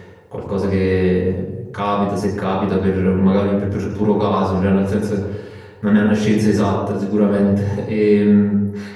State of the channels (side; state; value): both; identical; correlation 1.00